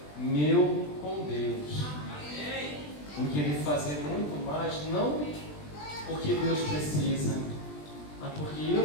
meu com Deus. Em querer fazer muito mais, não porque Deus precisa, mas porque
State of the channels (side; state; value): right; late; 20 ms